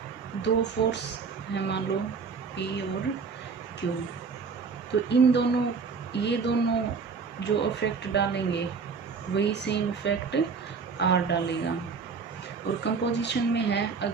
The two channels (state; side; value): quieter; left; 5.2 dB